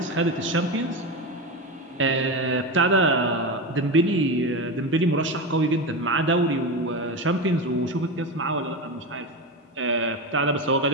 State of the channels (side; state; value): both; normal; correlation 0.19